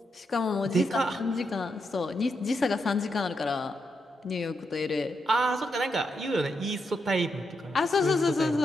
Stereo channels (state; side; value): normal; both; correlation 0.83